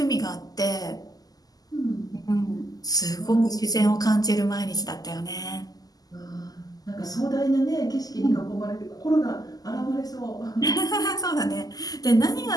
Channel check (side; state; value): right; late; 0.18 ms